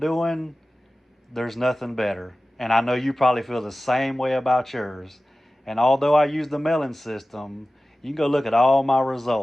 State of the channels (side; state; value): both; normal; correlation 0.96